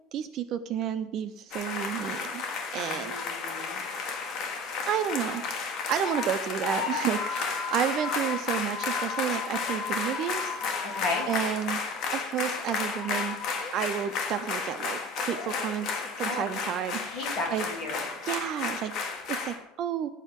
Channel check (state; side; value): normal; both; correlation 0.39